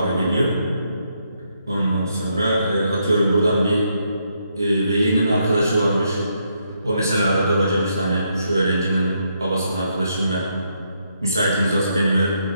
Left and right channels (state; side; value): inverted; both; correlation -0.77